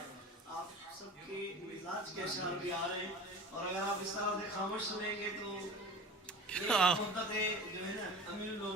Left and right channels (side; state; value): both; normal; correlation 0.37